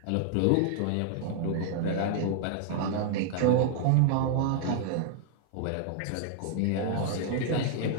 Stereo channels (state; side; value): different; both; correlation -0.01